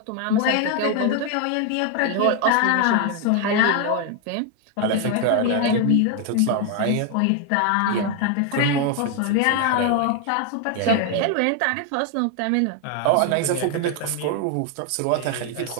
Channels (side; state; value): both; different; correlation 0.01